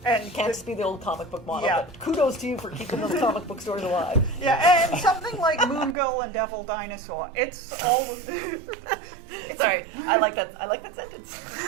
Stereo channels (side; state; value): left; drops out; at 6.0 s